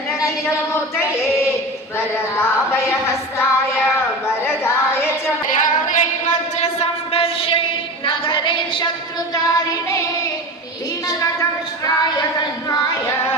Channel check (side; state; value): both; normal; correlation 0.29